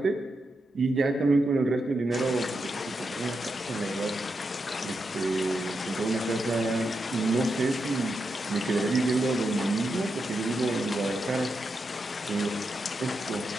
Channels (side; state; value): both; normal; correlation 0.85